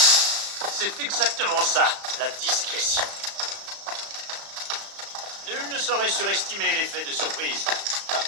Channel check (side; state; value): left; late; 35 ms